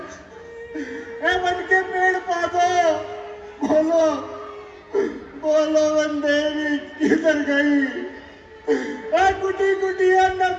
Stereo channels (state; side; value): identical; both; correlation 1.00